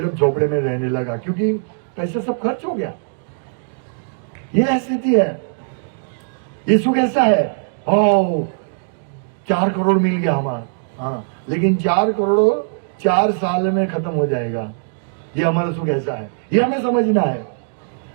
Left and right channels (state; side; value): silent; left; digital silence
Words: अब झोपड़े में रहने लगा क्योंकि पैसा सब खर्च हो गया। ये स्थिति है। ये सुख ऐसा है, 4 करोड़ मिल गया हमारा, हाँ, लेकिन 4 करोड़ 4 साल में खत्म हो जाएगा। ये हमारा सुख ऐसा है, ये हमें समझना है।